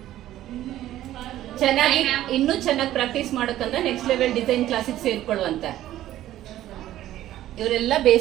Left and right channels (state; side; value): quieter; left; 13.5 dB